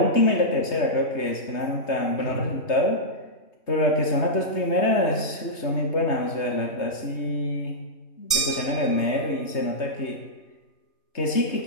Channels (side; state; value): right; late; 3.3 ms